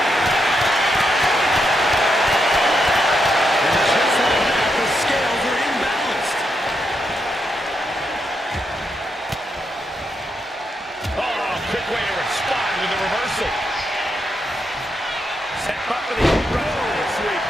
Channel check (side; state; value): both; normal; correlation 0.82